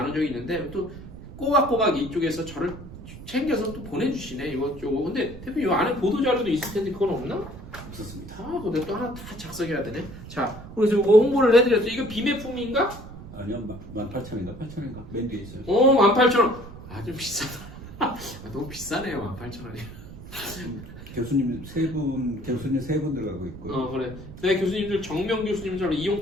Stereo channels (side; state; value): right; noise; rumble, 14 dB below the sound